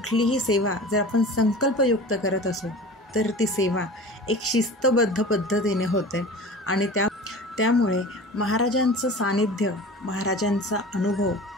सेवा जर आपण संकल्पयुक्त करत असू तर ती सेवा एक शिस्तबद्ध पद्धतीने होते आणि त्यामुळे महाराजांचं सानिध्य, महाराजांचा अनुभव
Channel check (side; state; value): both; normal; correlation 0.37